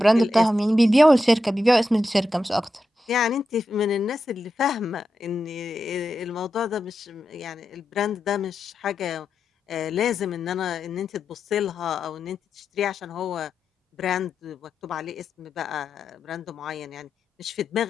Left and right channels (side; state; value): both; normal; correlation 0.88